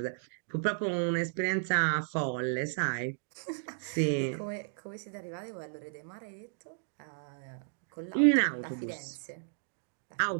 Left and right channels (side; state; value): left; silent; digital silence